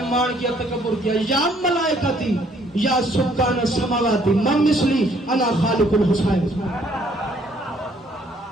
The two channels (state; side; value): normal; both; correlation 0.64